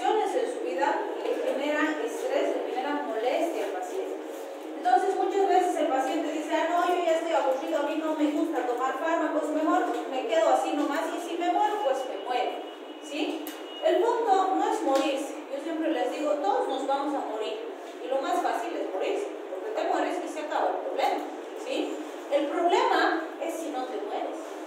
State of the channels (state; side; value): identical; both; correlation 1.00